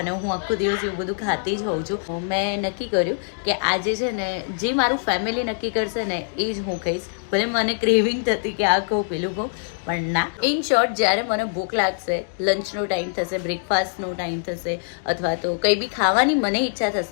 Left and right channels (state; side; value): silent; right; digital silence